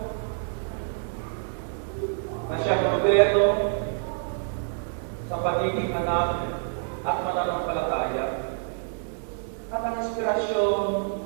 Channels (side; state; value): left; silent; digital silence